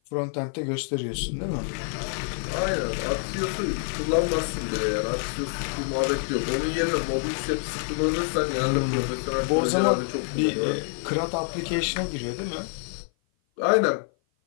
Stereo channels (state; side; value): silent; right; 55 dB below the other